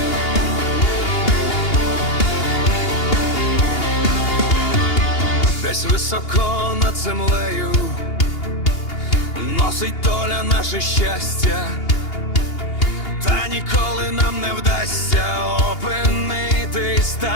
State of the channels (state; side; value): late; right; 2.8 ms